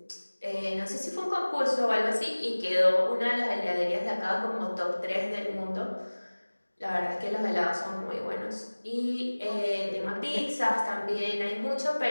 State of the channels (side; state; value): both; inverted; correlation -1.00